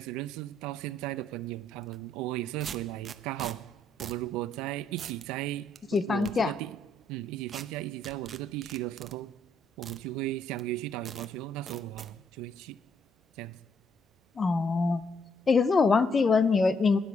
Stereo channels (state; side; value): normal; both; correlation 0.71